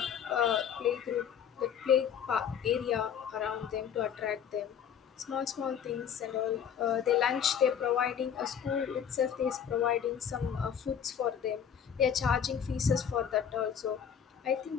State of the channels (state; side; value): quieter; right; 8.2 dB